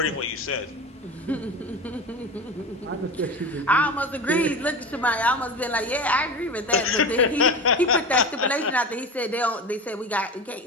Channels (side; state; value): both; normal; correlation 0.28